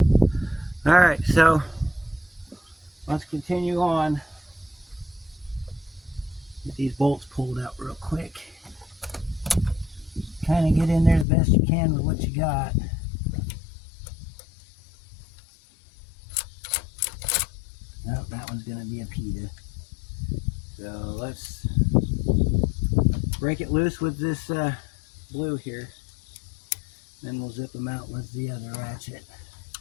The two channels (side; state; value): right; drops out; at 11.2 s